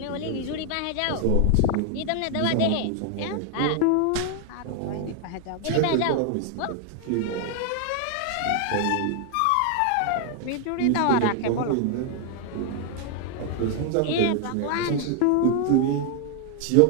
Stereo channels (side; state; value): both; different; correlation 0.00